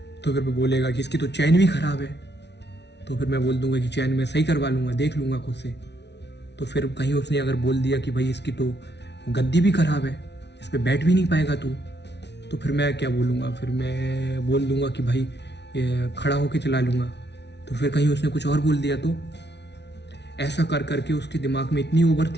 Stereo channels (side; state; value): right; late; 0.50 ms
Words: तो फिर मैं बोलेगा कि इसकी तो चैन भी ख़राब है। तो फिर मैं बोल दूंगा कि चैन मैं सही करवा लूँगा, देख लूँगा खुद से। तो फिर कहीं उसने अगर बोल दिया कि भाई इसकी तो गद्दी भी ख़राब है, इस पर बैठ भी नहीं पाएगा तू, तो फिर मैं क्या बोलूँगा, फिर मैं बोल दूंगा कि भाई खड़ा होके चला लूँगा। तो फिर कहीं उसने कुछ और बोल दिया, तो ऐसा कर करके उसके दिमाग में इतनी ओवर